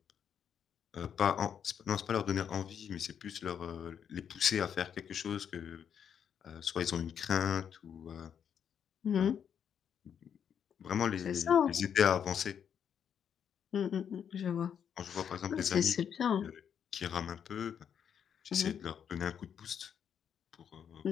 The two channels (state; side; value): quieter; right; 8.2 dB